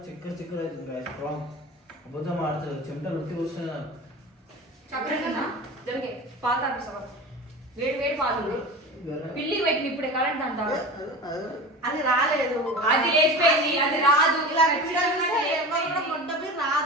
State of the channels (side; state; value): both; normal; correlation 0.33